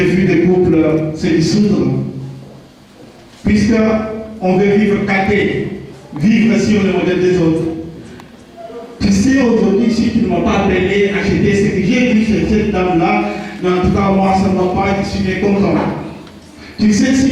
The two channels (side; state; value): both; identical; correlation 1.00